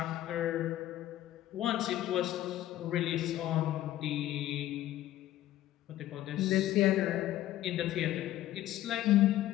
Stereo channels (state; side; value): quieter; right; 13.8 dB